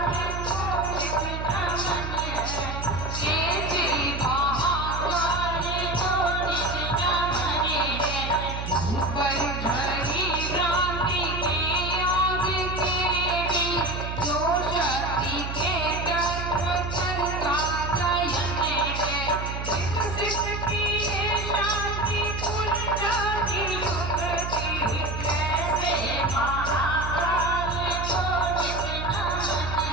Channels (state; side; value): noise; right; hum, 5 dB below the sound